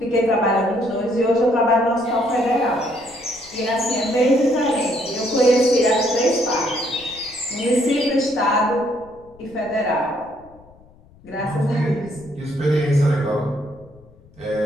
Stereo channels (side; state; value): left; noise; rumble, 26 dB below the sound